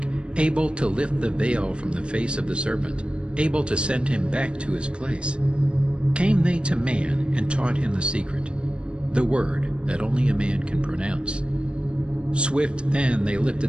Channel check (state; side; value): late; left; 0.056 ms